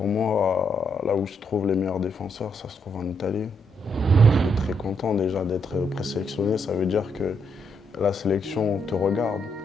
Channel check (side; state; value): both; normal; correlation 0.77